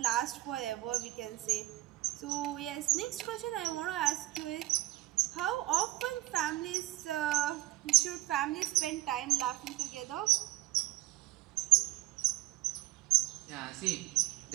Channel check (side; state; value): left; quieter; 17.8 dB